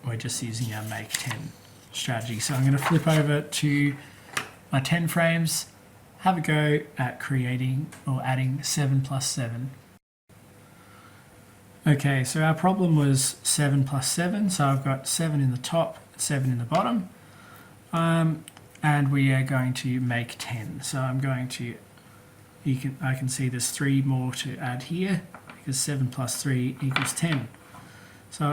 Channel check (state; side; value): identical; both; correlation 1.00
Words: we're just using our make 10 strategy. So I'm going to flip over to my 10 frames, have a go at creating or adding 7 plus 7. Okay, so our problem was 7 plus 7, so I've got 7 in the top, 7 in the bottom, and we are going to make 10. So I'm going to, I can see there's 3 more to add here, because 7 plus 3 equals 10. So I'll